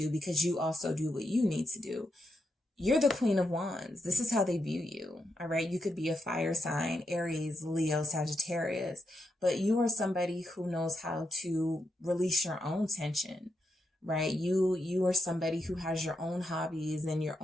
because you also do what you need to do. You're the Queen of Wands. This is how they view you. All right. You could be a fire sign, Aries, Leo, Sagittarius, but you are somebody who knows how to release your own tension, right? You are somebody who has your own hobbies and your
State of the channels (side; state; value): both; normal; correlation 0.83